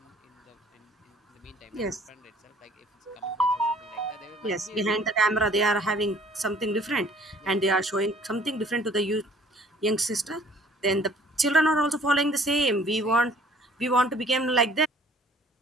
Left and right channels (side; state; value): both; normal; correlation 0.55